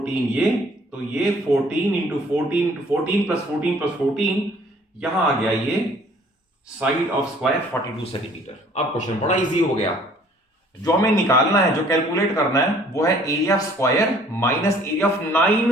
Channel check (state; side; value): normal; both; correlation 0.56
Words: ये, तो ये 14 इंटू 14 प्लस 14 प्लस 14, यहां आ गया ये साइड ऑफ स्क्वायर 42 सेंटीमीटर। अब क्वेश्चन बड़ा इजी हो गया, जो हमें निकालना है, जो कैलकुलेट करना है वो है area of square minus area of